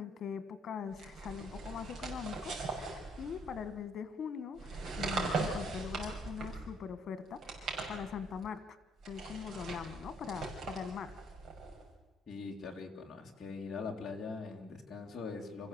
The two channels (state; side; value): normal; both; correlation 0.66